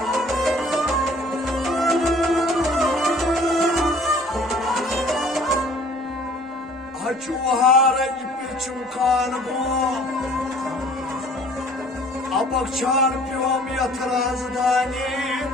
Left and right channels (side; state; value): both; normal; correlation 0.53